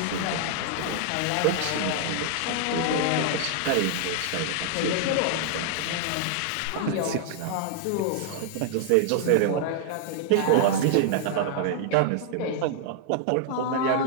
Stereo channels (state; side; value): different; both; correlation 0.00